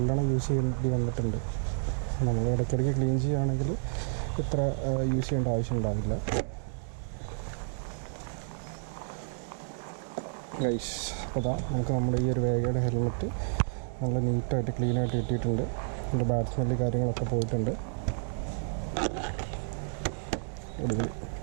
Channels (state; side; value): silent; left; digital silence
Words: യൂസ് ചെയ്യേണ്ടി വന്നിട്ടുണ്ട്. നമ്മൾ ഇടയ്ക്കിടയ്ക്ക് ക്ലീൻ ചെയ്യുകയാണെങ്കിൽ ഇത്ര യൂസ് ചെയ്യേണ്ട ആവശ്യം ഉണ്ടാവില്ല. ഗൈസ്, അപ്പോൾ അതാ നമുക്ക് നമ്മുടെ ഈ ഒരു വേഗയുടെ ഹെൽമെറ്റ് നല്ല നീറ്റായിട്ട് ക്ലീനായിട്ട് കിട്ടിയിട്ടുണ്ട്. അതിൻ്റെ ബാഡ് സ്മെല്ല് കാര്യങ്ങളൊക്കെ പോയിട്ടുണ്ട്. അടിപൊളി.